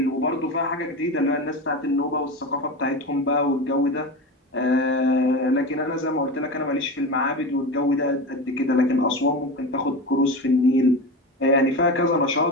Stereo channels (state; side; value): normal; both; correlation 0.24